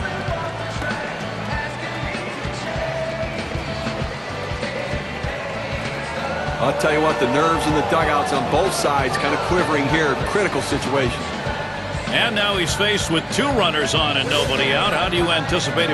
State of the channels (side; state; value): both; identical; correlation 1.00